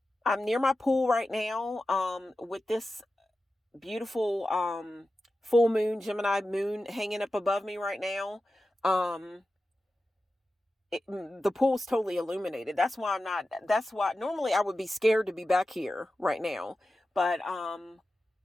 near my pool right now with this beautiful full moon, Gemini moon hanging up above me right now. The pool's totally illuminated. That's why normally I would be scared to be back here right now. But I'm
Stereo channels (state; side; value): normal; both; correlation 0.93